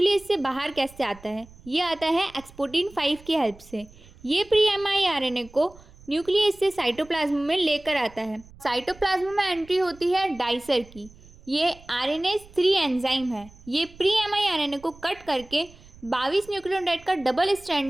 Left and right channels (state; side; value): noise; right; rumble, 23 dB below the sound